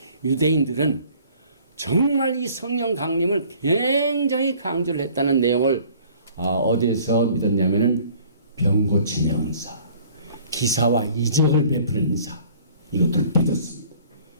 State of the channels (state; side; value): inverted; both; correlation -0.53